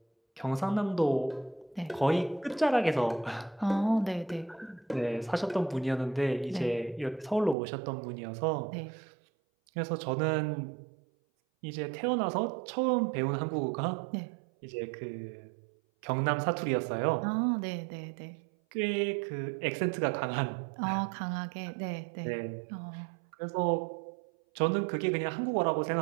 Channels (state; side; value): drops out; left; at 7.6 s